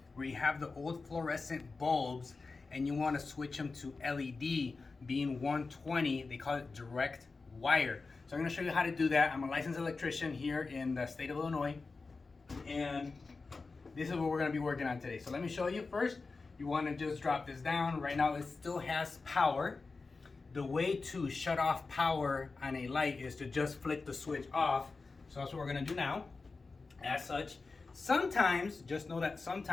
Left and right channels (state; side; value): quieter; right; 4.1 dB